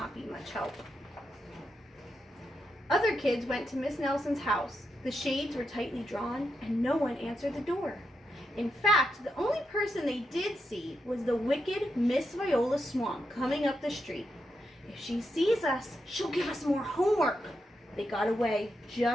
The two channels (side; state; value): both; normal; correlation 0.84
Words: be much help. Other kids went to Miss Nelson's house. The shades were tightly drawn, and no one answered the door. In fact, the only person they did see was the wicked Miss Viola Swamp coming up the street. "If she sees us, she'll give us more homework." They got away